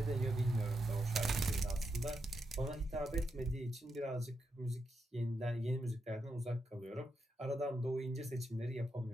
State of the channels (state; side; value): normal; both; correlation 0.84